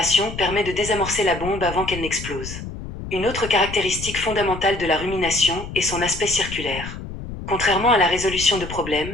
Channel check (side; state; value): left; noise; rumble, 10 dB below the sound